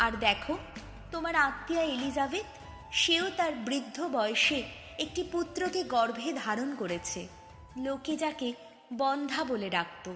আর দেখো, তোমার আত্মীয়া এলিজাবেথ, সেও তার বৃদ্ধ বয়সে একটি পুত্রকে গর্ভে ধারণ করেছে। লোকে যাকে বন্ধ্যা বলে ডাকত,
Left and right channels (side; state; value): both; identical; correlation 1.00